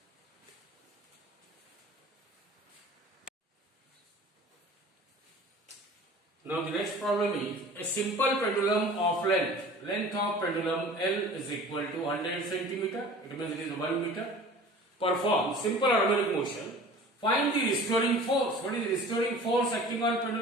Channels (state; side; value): normal; both; correlation 0.43